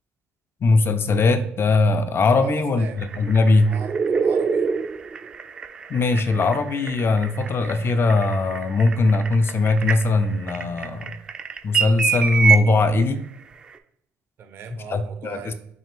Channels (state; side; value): normal; both; correlation 0.79